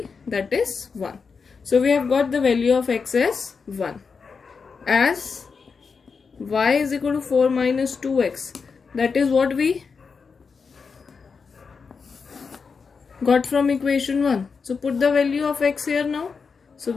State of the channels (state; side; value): quieter; right; 5.3 dB